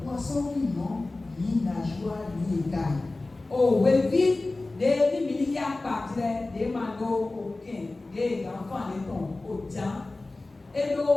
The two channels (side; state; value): right; quieter; 3.1 dB